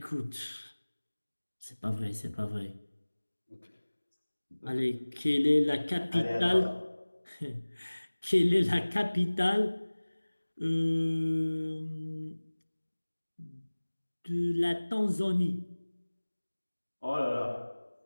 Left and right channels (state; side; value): inverted; both; correlation -1.00